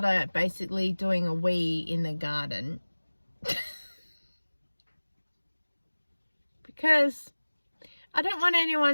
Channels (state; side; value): inverted; both; correlation -1.00